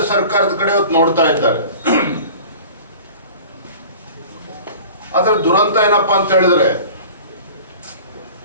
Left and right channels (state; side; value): inverted; both; correlation -0.42